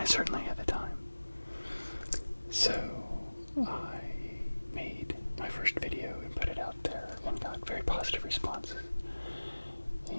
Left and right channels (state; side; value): inverted; both; correlation -1.00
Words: I certainly had the time. So I made my first video and put it out there and got very positive responses.